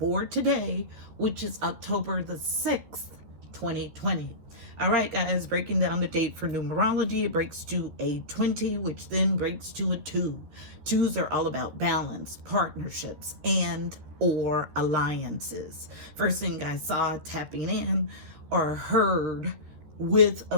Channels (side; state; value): left; late; 13 ms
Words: today, which is October the 6th, 2020. All right, guys, breaking down the date for numerology, it breaks to a 20, which then breaks to a 2. Twos are all about balance, partnerships, and or alliances. First thing I saw tapping in or heard with